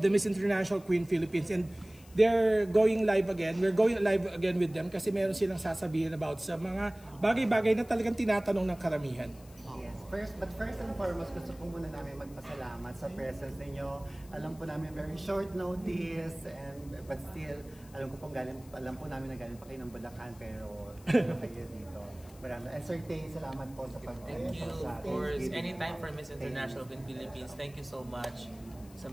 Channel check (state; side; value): noise; left; hiss, 24 dB below the sound